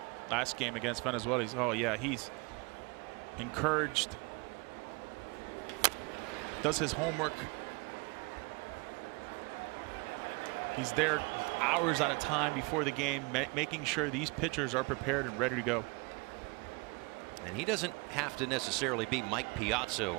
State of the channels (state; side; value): quieter; left; 28.3 dB